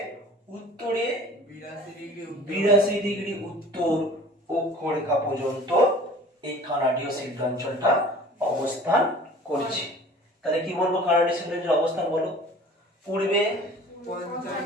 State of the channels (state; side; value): normal; both; correlation 0.45